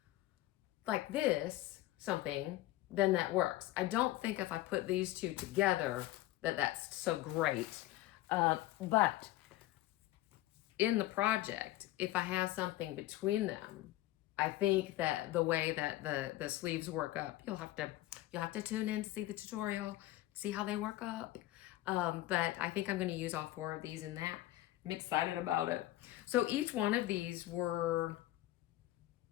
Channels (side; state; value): right; quieter; 16.1 dB